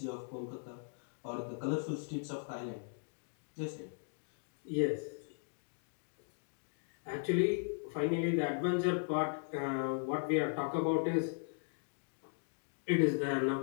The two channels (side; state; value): right; silent; digital silence